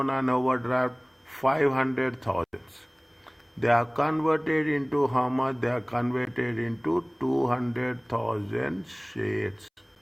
and overdraft? 500,000. They are converted into how much? They are converted into 200,000 shares.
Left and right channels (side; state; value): both; identical; correlation 1.00